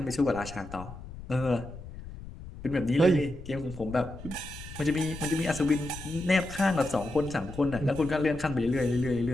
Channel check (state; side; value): noise; left; rumble, 13 dB below the sound